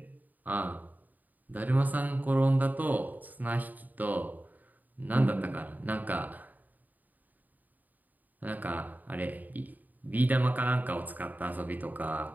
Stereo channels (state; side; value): late; left; 0.083 ms